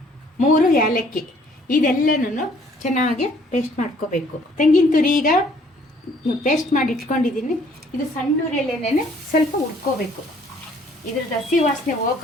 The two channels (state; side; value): normal; both; correlation 0.60